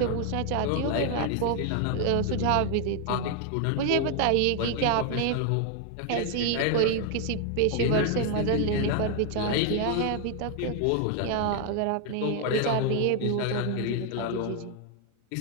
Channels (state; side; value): different; both; correlation 0.00